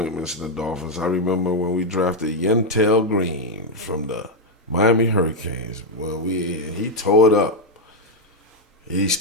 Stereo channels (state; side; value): normal; both; correlation 0.00